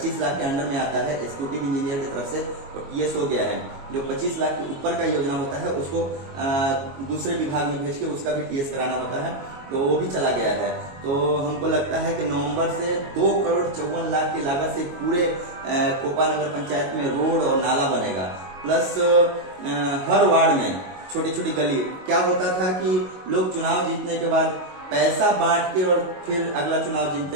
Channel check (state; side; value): late; left; 22 ms